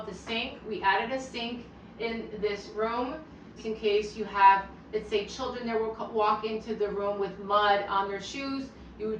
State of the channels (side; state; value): both; identical; correlation 1.00